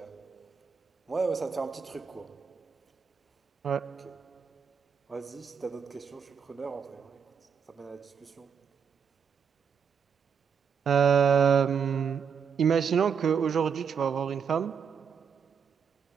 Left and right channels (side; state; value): left; quieter; 6.7 dB